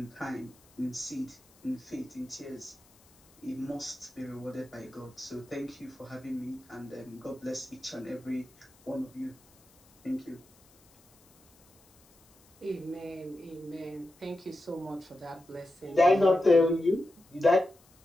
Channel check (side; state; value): left; noise; hiss, 29 dB below the sound